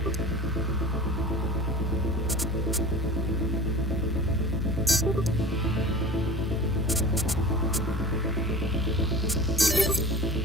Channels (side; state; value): both; normal; correlation 0.38